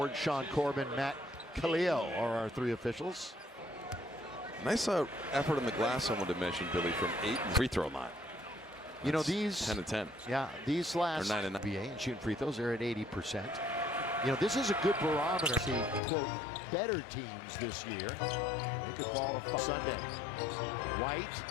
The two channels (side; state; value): right; drops out; at 16.0 s